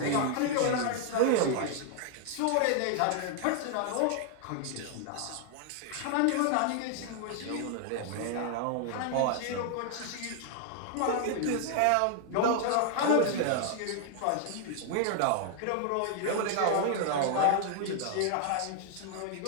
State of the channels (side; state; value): both; different; correlation 0.00